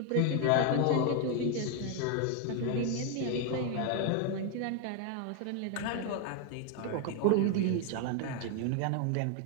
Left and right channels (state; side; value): different; both; correlation 0.01